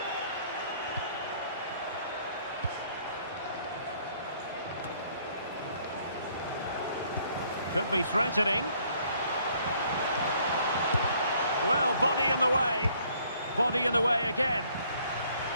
Could be threatening. Well, body in the way. Body in the way again.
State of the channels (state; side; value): inverted; both; correlation -0.63